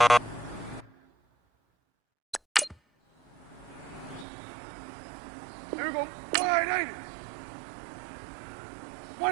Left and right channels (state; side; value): drops out; left; at 4.2 s